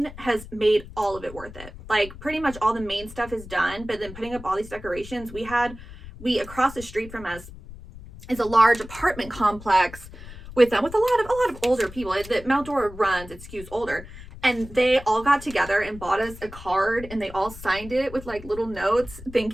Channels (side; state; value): left; noise; rumble, 15 dB below the sound